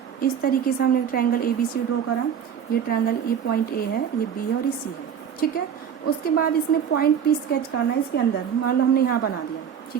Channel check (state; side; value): quieter; left; 8.1 dB